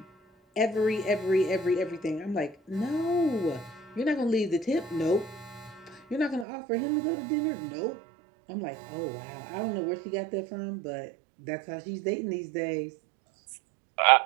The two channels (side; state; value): left; drops out; at 6.5 s